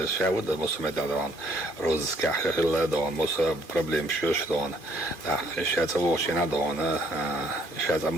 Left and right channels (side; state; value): left; late; 2.5 ms